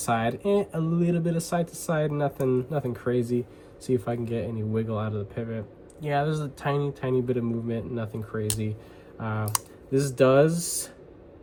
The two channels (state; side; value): identical; both; correlation 1.00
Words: a little bit of side to side, nothing crazy. See if I can get any wiggle out of the pivot. Yeah, there's a tiny bit of movement, nothing crazy. This does